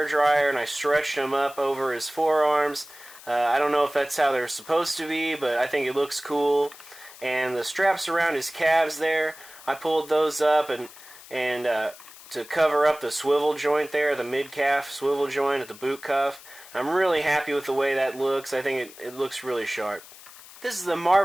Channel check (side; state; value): left; noise; hiss, 19 dB below the sound